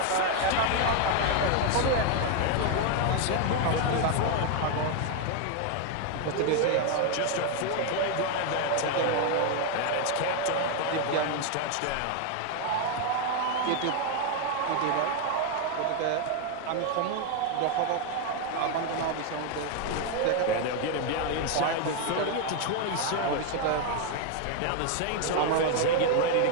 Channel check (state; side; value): different; both; correlation 0.01